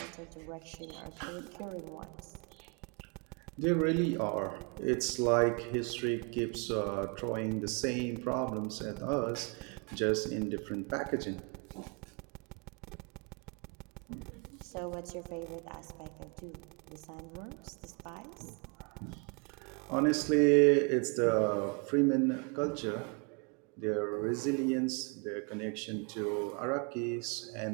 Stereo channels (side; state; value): left; quieter; 34.4 dB